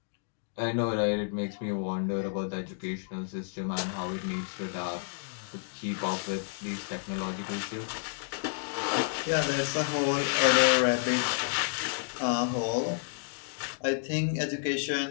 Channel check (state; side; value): silent; right; digital silence